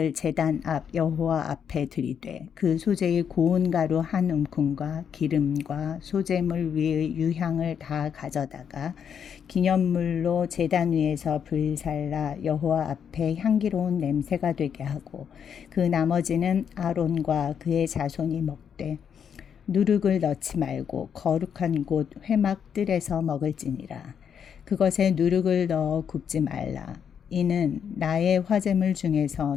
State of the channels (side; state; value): right; quieter; 7.8 dB